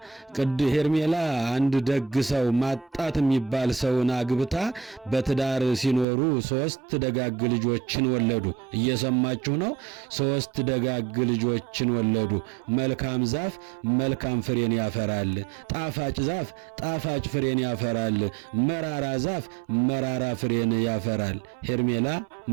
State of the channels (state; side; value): drops out; left; at 6.1 s